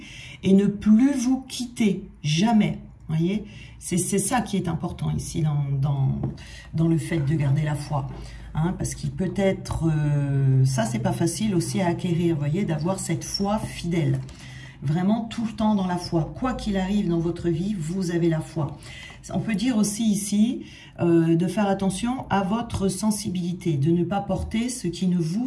et ne plus vous quitter, jamais. Vous voyez, c'est ça qui est important ici dans le fait de garder la foi. Hein, parce qu'il peut être, ça c'est pas facile aussi à acquérir, vous voyez, d'avoir cette foi fidèle. Vraiment tout le temps dans la foi. Quoi qu'il arrive dans votre vie, vous avez la foi. On peut dire aussi ici de faire attention à votre sensibilité, de ne pas porter ce qui ne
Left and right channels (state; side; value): identical; both; correlation 1.00